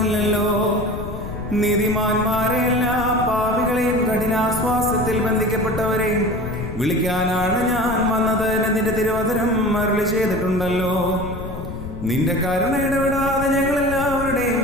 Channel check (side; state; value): left; noise; rumble, 9 dB below the sound